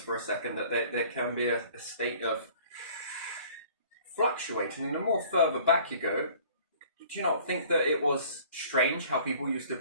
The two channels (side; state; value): both; inverted; correlation -0.51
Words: for a second, that there can be a state of fluctuating. And the more further back you go, do you not think that it was strange how people used to